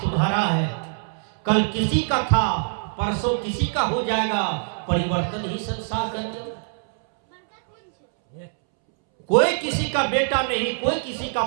तुम्हारा है कल किसी का था, परसों किसी का हो जाएगा। परिवर्तन ही संसार का नियम। कोई किसी का बेटा नहीं, कोई किसी का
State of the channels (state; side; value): silent; left; 63 dB below the other